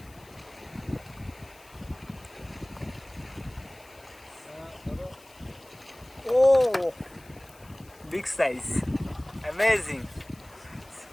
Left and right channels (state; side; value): noise; left; hiss, 25 dB below the sound